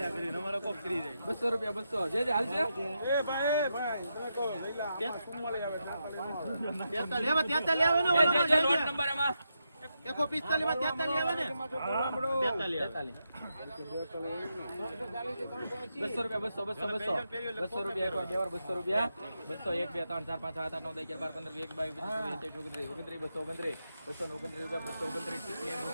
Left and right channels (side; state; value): both; inverted; correlation -0.85